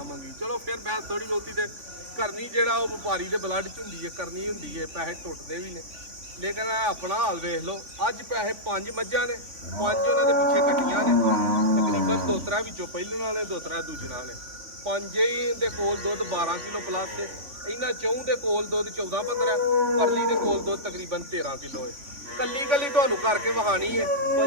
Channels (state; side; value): late; left; 3.5 ms